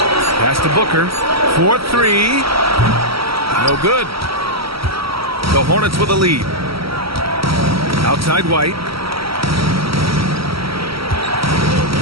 Pass to Booker. 4-3. No good. The Hornets with a lead. Outside White.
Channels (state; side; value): late; left; 0.75 ms